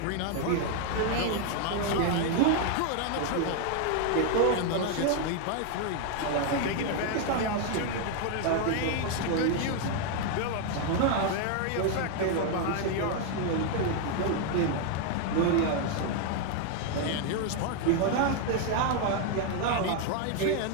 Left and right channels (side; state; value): both; different; correlation 0.00